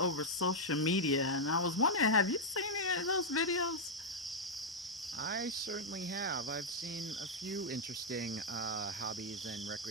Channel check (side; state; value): both; normal; correlation -0.03